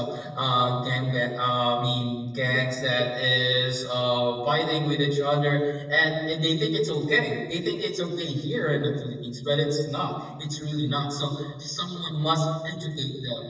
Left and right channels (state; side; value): identical; both; correlation 1.00